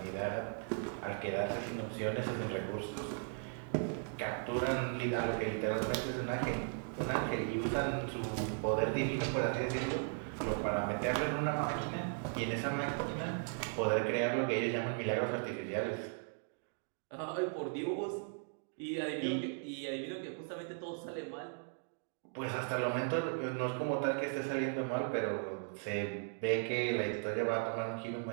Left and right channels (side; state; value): left; silent; 53 dB below the other